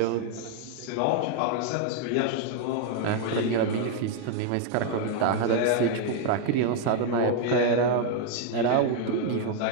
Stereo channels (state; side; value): different; both; correlation 0.00